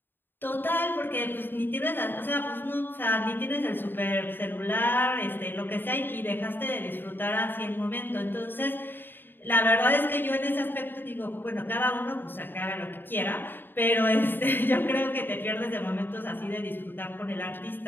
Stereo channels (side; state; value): right; late; 0.095 ms